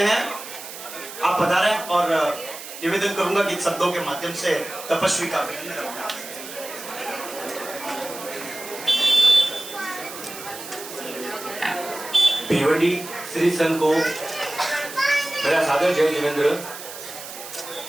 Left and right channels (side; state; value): right; noise; hiss, 12 dB below the sound